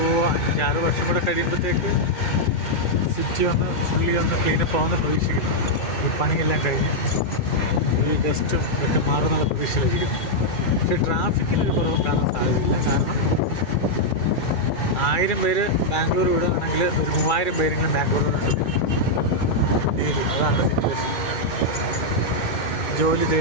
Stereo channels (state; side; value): late; right; 2.3 ms